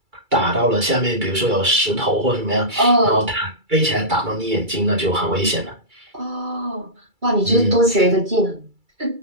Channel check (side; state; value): left; late; 2.3 ms